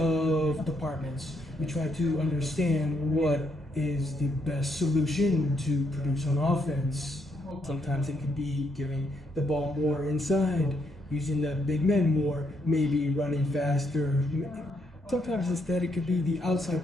departments, we try to understand what is the best solution to produce on offense. Sometimes it could be giving the ball more inside, using the big men more, maybe running faster. Sometimes instead it could be the outside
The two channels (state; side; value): normal; both; correlation 0.76